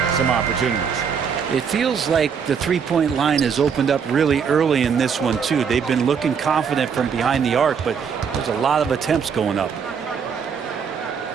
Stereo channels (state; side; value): quieter; left; 6.7 dB